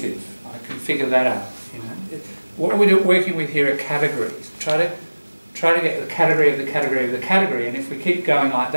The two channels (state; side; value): inverted; both; correlation -1.00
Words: I can figure that out. What we're working with here are categories. Try to get the category of the category of the category, and if we keep going like